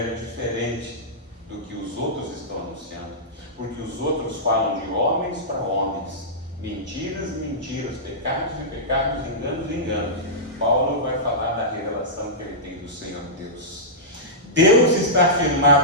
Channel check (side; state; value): both; normal; correlation -0.15